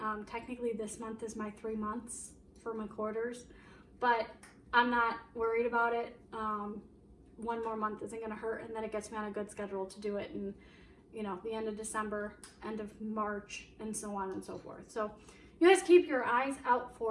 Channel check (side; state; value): both; identical; correlation 1.00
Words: Technically this month is my 3 months for my quarters, but I'm not worried about it. One more month isn't going to hurt, and then it gets me on a good schedule to do it in, you know, the end of December, end of March, and so on and so forth. So you guys keep your eyes out